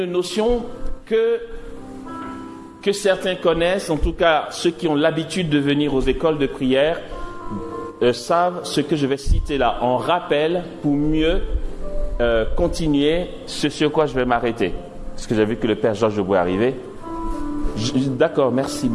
notion que certains connaissent, en tout cas ceux qui ont l'habitude de venir aux écoles de prière, savent ce que je vais citer là en rappel pour mieux continuer ce sur quoi je vais m'arrêter. Parce que j'ai vu que le Père Georges Bois est arrivé. D'accord, merci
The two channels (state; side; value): identical; both; correlation 1.00